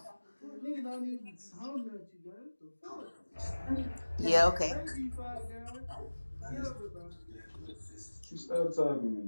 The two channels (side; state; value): both; inverted; correlation -1.00